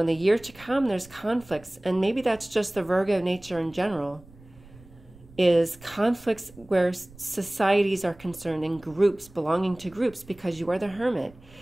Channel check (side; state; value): right; noise; rumble, 23 dB below the sound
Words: the year to come, there's conflicts. And maybe that's just the Virgo nature in general, is conflicts where societies are concerned and groups, belonging to groups, because you are the hermit.